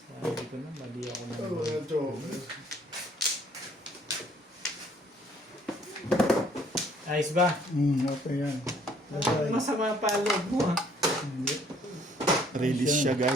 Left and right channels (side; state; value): both; normal; correlation 0.61